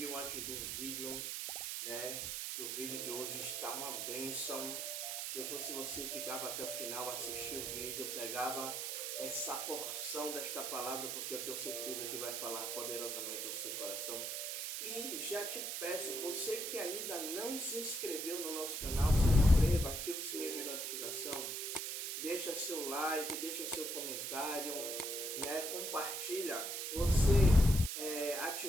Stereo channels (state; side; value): noise; right; hiss, 3 dB below the sound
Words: antes do vídeo, né? Que o vídeo de hoje está uma bênção. Se eu fosse você, ficava até o final, assistia o vídeo, pegava essa porção desta palavra, porque eu tenho certeza que vai falar poderosamente ao seu coração. E já te peço, você que ainda não se inscreveu no nosso canal, se inscreva, ativa o sininho de notificação. Deixa seu like, deixa seu comentário, né? Compartilha. Você